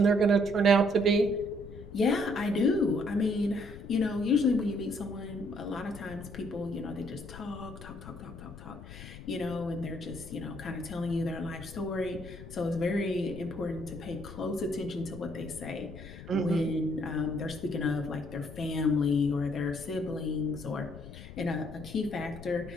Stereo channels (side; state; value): left; noise; rumble, 14 dB below the sound